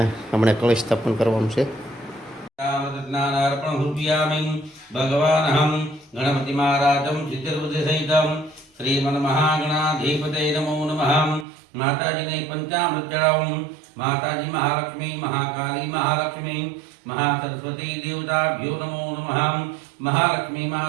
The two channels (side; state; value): left; drops out; at 11.5 s